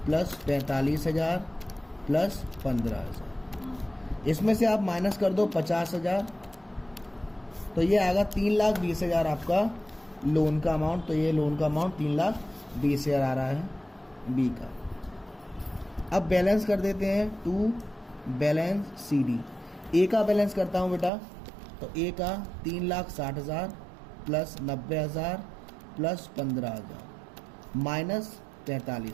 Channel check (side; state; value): left; drops out; at 21.1 s